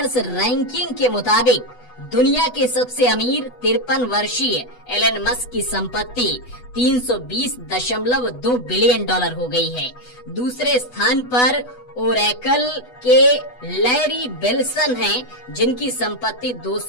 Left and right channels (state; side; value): late; right; 8.1 ms